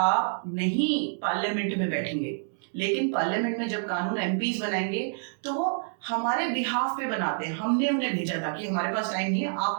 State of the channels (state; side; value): silent; left; 60 dB below the other